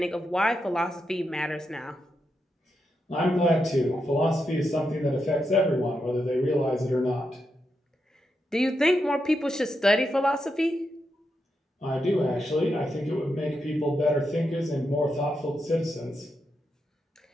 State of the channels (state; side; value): normal; both; correlation 0.85